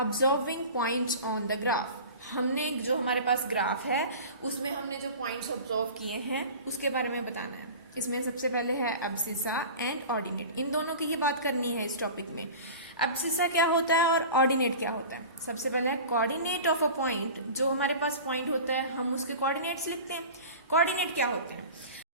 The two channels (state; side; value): inverted; both; correlation -0.36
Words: points on the graph. हमने जो हमारे पास ग्राफ है उसमें हमने जो पॉइंट्स ऑब्जर्व किए हैं उसके बारे में बताना है। इसमें सबसे पहले है एब्सिसा एंड ऑर्डिनेट, इन दोनों की ही बात करनी है इस टॉपिक में। एब्सिसा क्या होता है और ऑर्डिनेट क्या होता है। सबसे पहले है कोऑर्डिनेट ऑफ अ पॉइंट, जो हमारे पास पॉइंट होता है हम उसके कोऑर्डिनेट्स लिखते हैं। कोऑर्डिनेट क्या होता है,